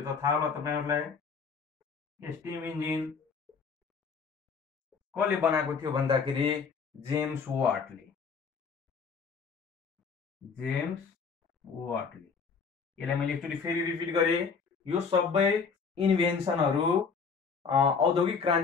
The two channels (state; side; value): quieter; right; 5.5 dB